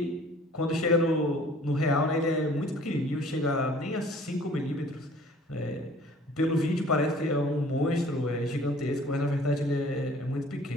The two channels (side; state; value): both; normal; correlation 0.52